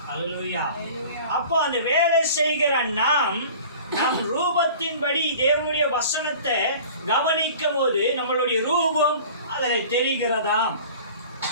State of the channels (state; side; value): inverted; both; correlation -0.43